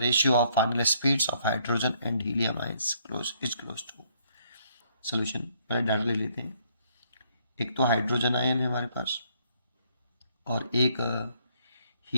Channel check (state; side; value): inverted; both; correlation -0.67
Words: ratio of final speeds of hydrogen and helium ions is close to। solution पहले data ले लेते हैं। एक तो hydrogen ion है हमारे पास और एक